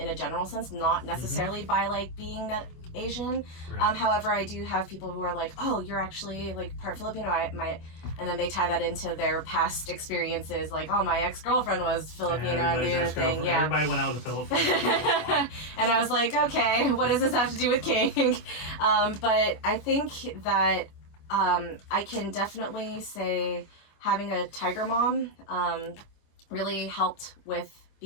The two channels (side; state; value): right; late; 25 ms